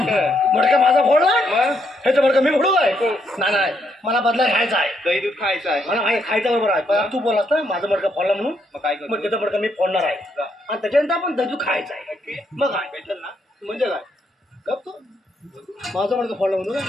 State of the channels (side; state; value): both; normal; correlation 0.75